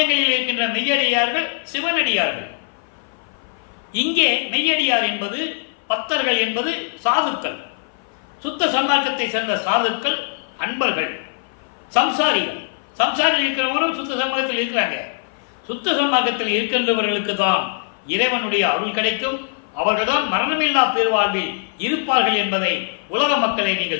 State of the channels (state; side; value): silent; right; 57 dB below the other